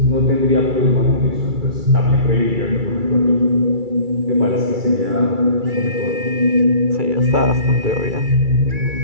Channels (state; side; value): late; left; 2.3 ms